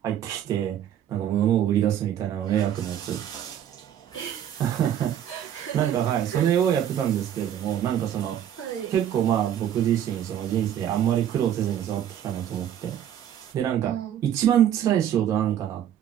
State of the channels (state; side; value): quieter; left; 10.3 dB